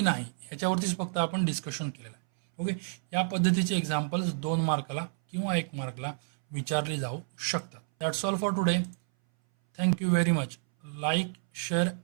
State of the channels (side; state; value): left; silent; 58 dB below the other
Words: नाही ह्याच्यावरतीच फक्त आपण डिस्कशन केलेलं आहे. ओके, या पद्धतीचे एक्झाम्पल्स 2 मार्काला किंवा 1 मार्कला विचारले जाऊ शकतात. That's all for today. Thank you very much. Like, share